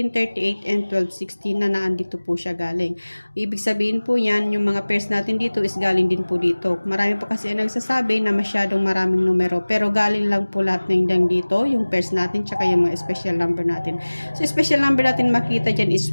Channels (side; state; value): both; inverted; correlation -1.00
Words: and 1216 na naandito po siya galing. Ibig sabihin po yan, yung mga pairs natin dito is galing din po dito. Marami po kasi ang nagsasabi na masyadong maraming numero, pero galing lang po lahat ng dito, yung pairs natin, tsaka yung mga special number natin. So, special number natin makita dyan